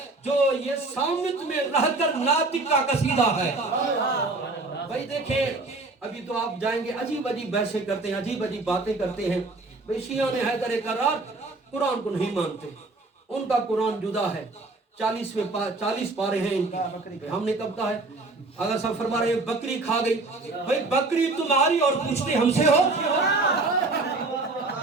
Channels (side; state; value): left; quieter; 3.3 dB